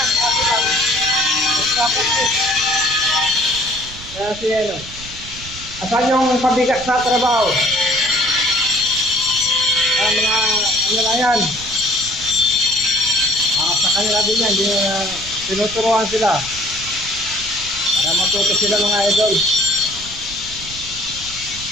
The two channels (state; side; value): noise; right; rumble, 15 dB below the sound